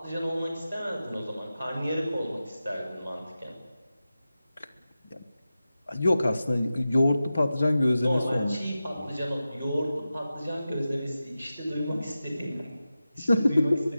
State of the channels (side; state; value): both; inverted; correlation -0.93